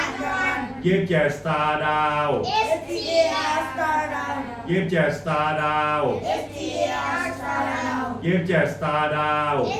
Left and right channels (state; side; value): identical; both; correlation 1.00